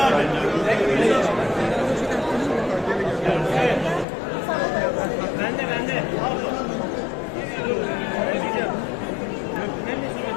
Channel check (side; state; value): right; drops out; at 4.0 s